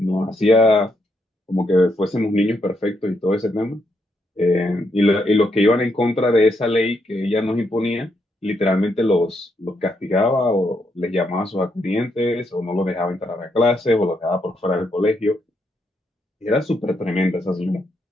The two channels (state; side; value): normal; both; correlation 0.78